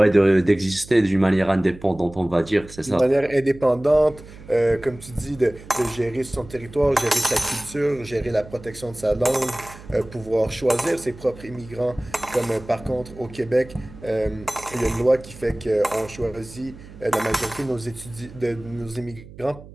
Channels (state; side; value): noise; right; hum, 18 dB below the sound